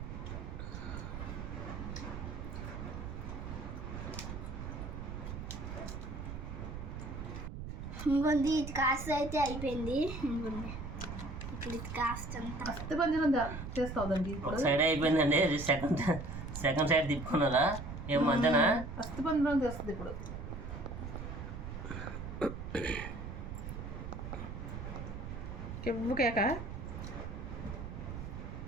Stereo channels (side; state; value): right; noise; rumble, 7 dB below the sound